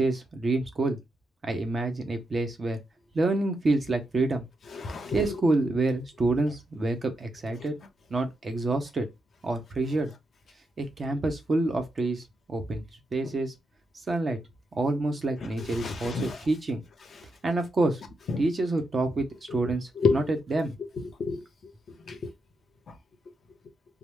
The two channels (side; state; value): both; normal; correlation 0.83